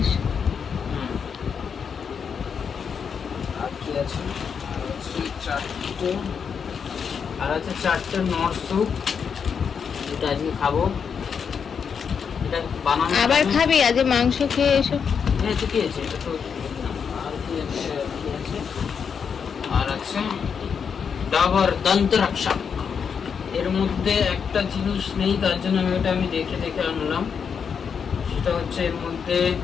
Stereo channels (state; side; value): quieter; right; 6.6 dB